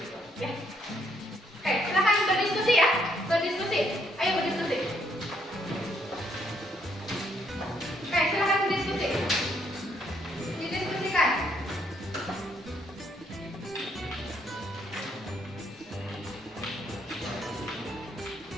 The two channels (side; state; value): both; normal; correlation 0.71